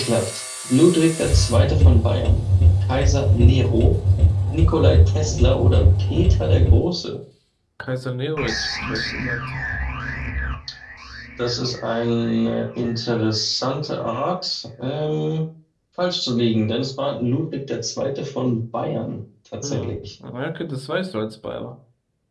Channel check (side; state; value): both; identical; correlation 1.00